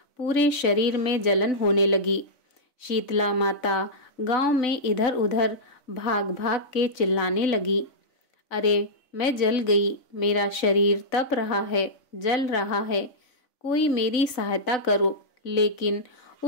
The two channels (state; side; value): late; right; 3.5 ms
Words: पूरे शरीर में जलन होने लगी। शीतला माता गांव में इधर उधर भाग भाग के चिल्लाने लगी, अरे मैं जल गई, मेरा शरीर तप रहा है, जल रहा है, कोई मेरी सहायता करो। लेकिन